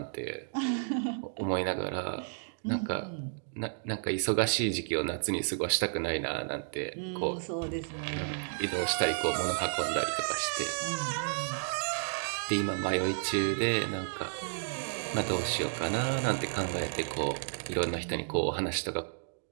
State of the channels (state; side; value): silent; left; digital silence